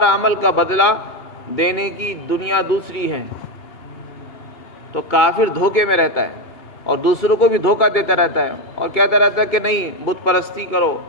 عمل کا بدلہ دینے کی دنیا دوسری ہے۔ تو کافر دھوکے میں رہتا ہے اور دوسروں کو بھی دھوکہ دیتا رہتا ہے اور کہتا رہتا ہے کہ نہیں بت پرستی کرو،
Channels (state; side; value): late; right; 2.9 ms